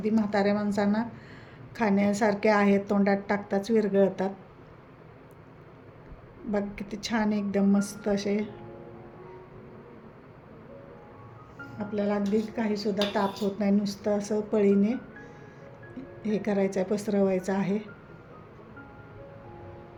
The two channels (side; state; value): both; identical; correlation 1.00